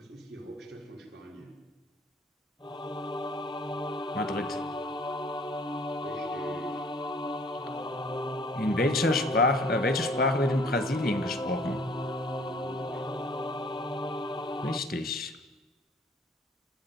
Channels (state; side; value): normal; both; correlation 0.55